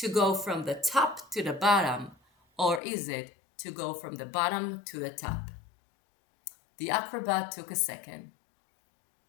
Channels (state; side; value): drops out; right; at 2.8 s